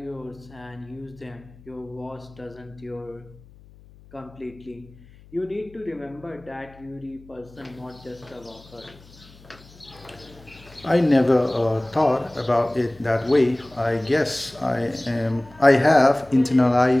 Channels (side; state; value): left; noise; hum, 24 dB below the sound